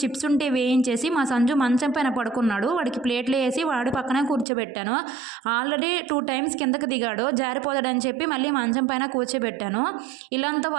చిప్స్ ఉంటే వేయించేసి మా సంజు మంచం పైన పడుకున్నాడు. వాడికి ప్లేట్లు వేసి వాడి పక్కనే కూర్చోబెట్టాను. ఆల్రెడీ 2 టైమ్స్ కిందకి దిగాడు. జారిపోతాడని చెప్పి మళ్ళీ మంచం పైన కూర్చోబెట్టాను. ఇల్లంతా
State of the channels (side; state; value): left; drops out; at 4.5 s